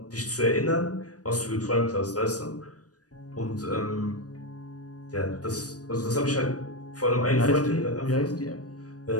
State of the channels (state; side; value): late; right; 0.68 ms